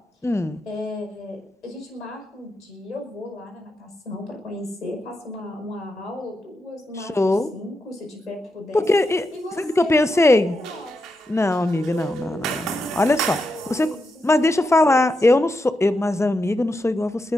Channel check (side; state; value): both; normal; correlation 0.85